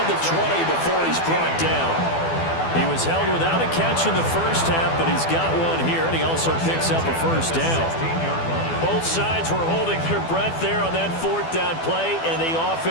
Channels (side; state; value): right; late; 12 ms